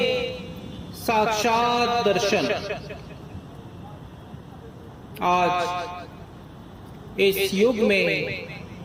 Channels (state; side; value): identical; both; correlation 1.00